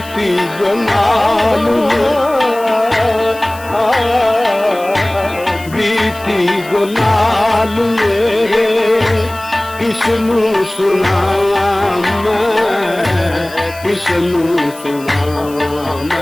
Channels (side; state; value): left; noise; hiss, 19 dB below the sound